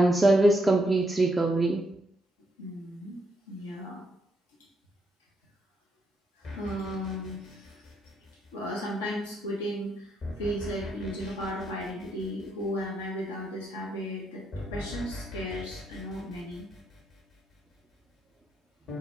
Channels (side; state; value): both; normal; correlation 0.77